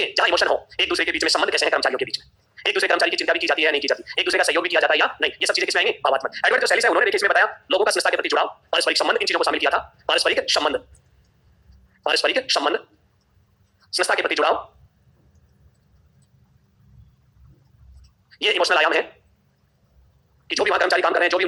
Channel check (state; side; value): identical; both; correlation 1.00